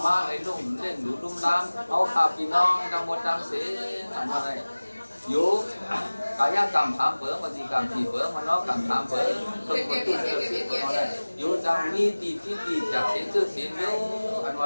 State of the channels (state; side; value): inverted; both; correlation -1.00